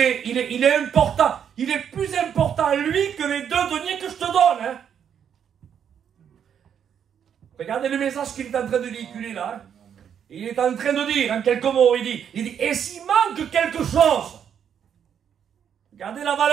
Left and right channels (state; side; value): quieter; left; 8.4 dB